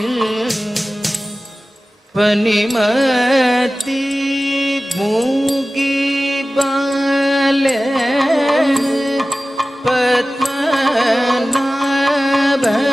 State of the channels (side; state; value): both; normal; correlation 0.96